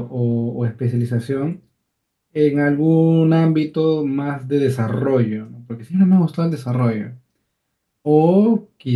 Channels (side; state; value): both; identical; correlation 1.00